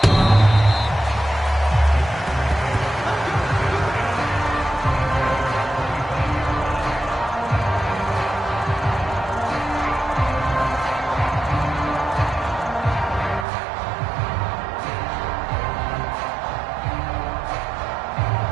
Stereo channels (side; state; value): left; drops out; at 13.5 s